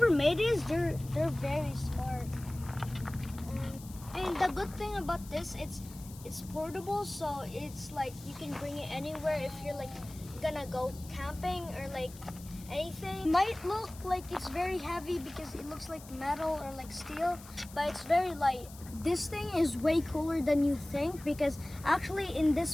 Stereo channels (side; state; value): left; noise; hiss, 18 dB below the sound